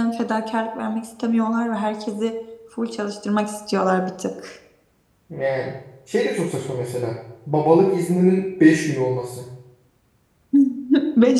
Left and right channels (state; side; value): identical; both; correlation 1.00